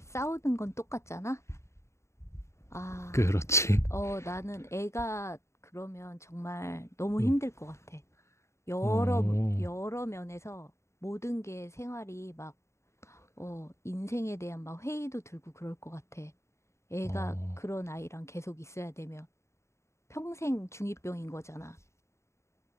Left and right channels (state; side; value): late; right; 0.14 ms